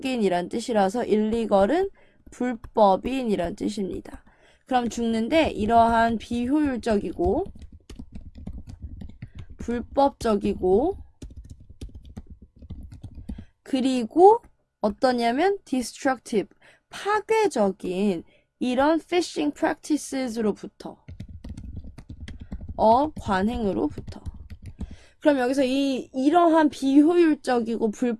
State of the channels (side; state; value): both; identical; correlation 1.00